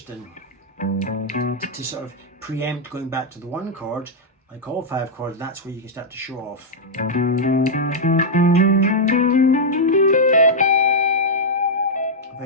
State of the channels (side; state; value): both; normal; correlation -0.05